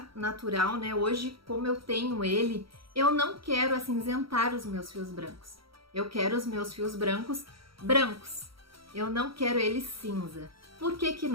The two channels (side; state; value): left; late; 0.75 ms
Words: natural, né, hoje como eu tenho ele, eu não quero acinzentar os meus fios brancos. Eu quero os meus fios brancos brancos. Eu não quero eles cinza. Por que que